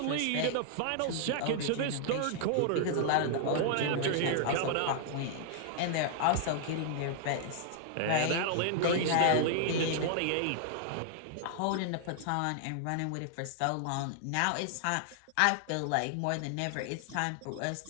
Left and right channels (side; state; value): both; different; correlation -0.01